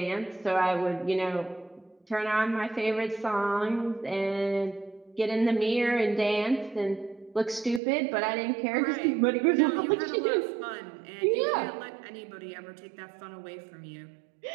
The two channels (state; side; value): drops out; left; at 7.8 s